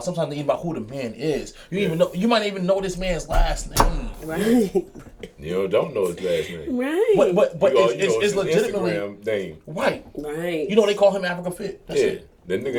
Sometimes it's even about who the man is. You might even know this man's last name. Right. You don't know his last name. Right. But You know it's his legitimately Instagram name. right. Right. You know they call him Africa Fit. That's Yeah, it. that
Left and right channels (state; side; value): identical; both; correlation 1.00